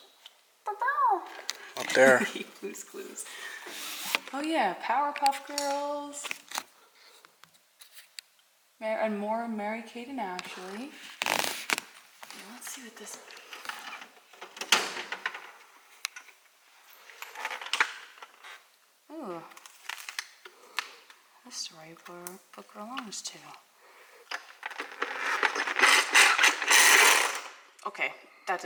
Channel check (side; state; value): both; identical; correlation 1.00